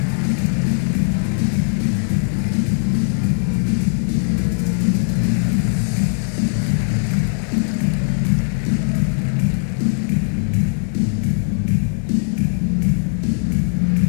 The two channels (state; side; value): silent; right; digital silence